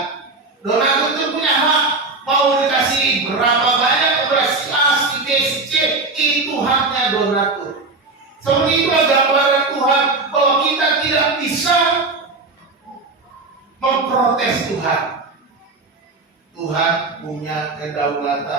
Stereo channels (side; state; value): left; quieter; 3.6 dB